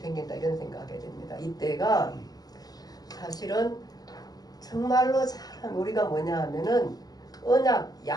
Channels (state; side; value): late; right; 0.19 ms